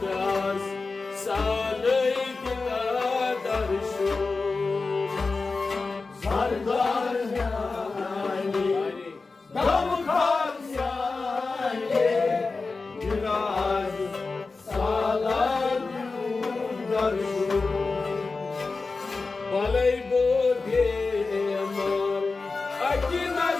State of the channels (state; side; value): quieter; right; 4.0 dB